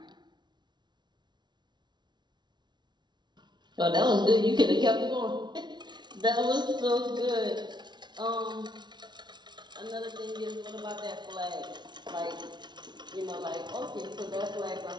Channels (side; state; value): left; late; 0.21 ms